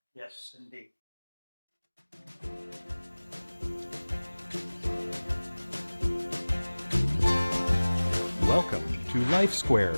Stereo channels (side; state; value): both; inverted; correlation -1.00